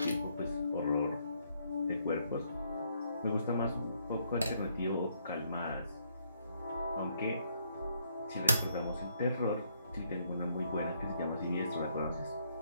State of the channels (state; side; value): inverted; both; correlation -0.71